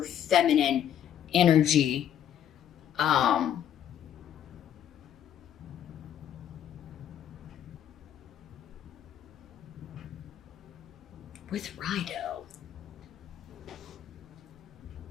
feminine energy. With Rido.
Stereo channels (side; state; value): right; quieter; 10.0 dB